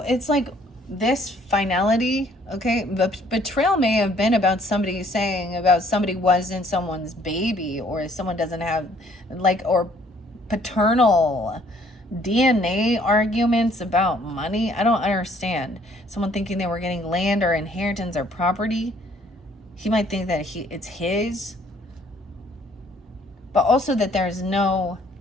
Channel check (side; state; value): both; normal; correlation 0.61